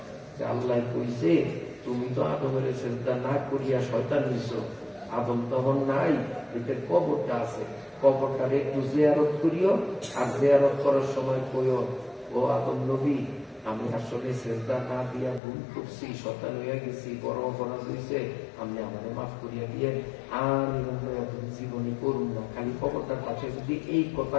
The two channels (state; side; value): drops out; right; at 15.4 s